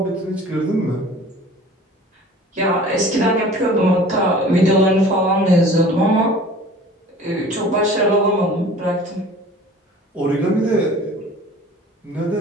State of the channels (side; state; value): both; normal; correlation 0.45